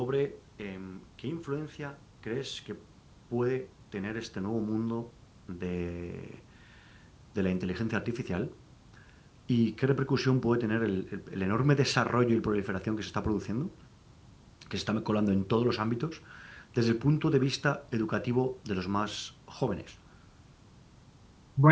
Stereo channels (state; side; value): identical; both; correlation 1.00